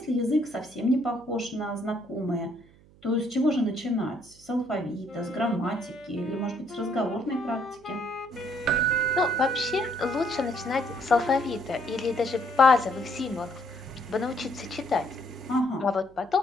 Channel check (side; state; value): right; noise; hum, 26 dB below the sound